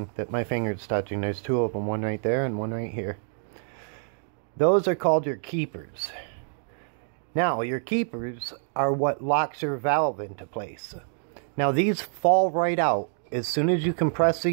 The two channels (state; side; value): silent; left; digital silence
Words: that my finger's touching. There's two of them, one right there and one right here. Those are called your keepers. Now, your keepers are what locks your valve into place. Now, these fall right out. As soon as you compress